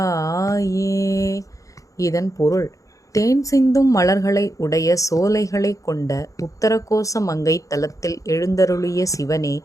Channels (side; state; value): right; late; 0.16 ms